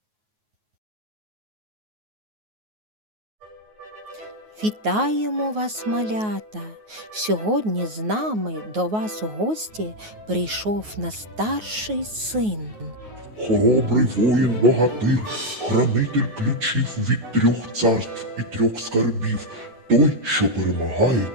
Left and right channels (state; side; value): late; left; 9.4 ms